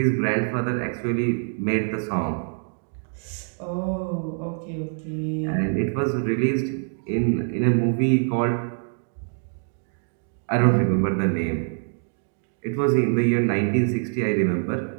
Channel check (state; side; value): silent; left; 62 dB below the other